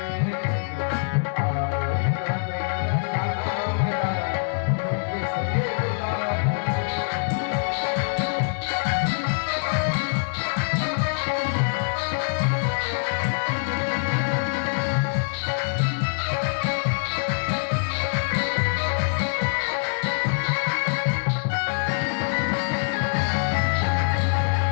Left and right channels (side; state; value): right; silent; digital silence